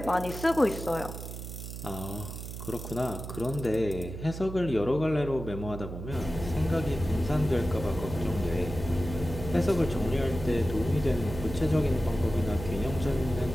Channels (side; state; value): right; noise; hum, 9 dB below the sound